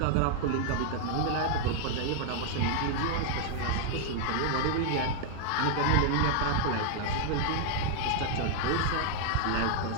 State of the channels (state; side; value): different; both; correlation 0.00